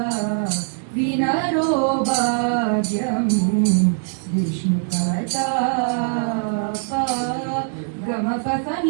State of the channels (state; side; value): silent; left; 63 dB below the other